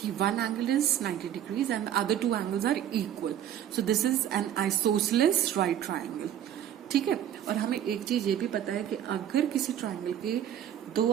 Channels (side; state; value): left; quieter; 10.5 dB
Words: one angle is 90 degrees and other two angles are equal, so this is an isosceles right triangle. ठीक है, और हमें एक चीज ये भी पता है कि अगर किसी ट्राइंगल के